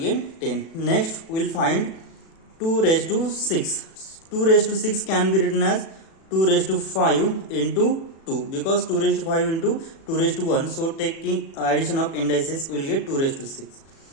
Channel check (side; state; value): right; late; 36 ms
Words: 10. Next we'll find 2 raised to 6. 2 raised to 6 can be written as 2 raised to 5 into 2, because 2 raised to 5 into 2 raised to 1. So taking addition of indices we will get 2 raised to 6.